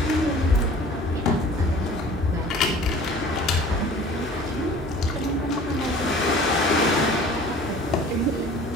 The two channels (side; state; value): both; normal; correlation 0.47